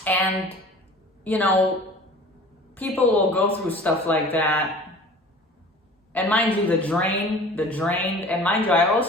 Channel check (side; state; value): both; normal; correlation 0.44